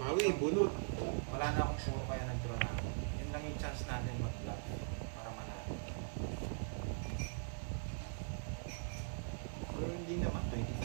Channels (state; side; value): silent; left; digital silence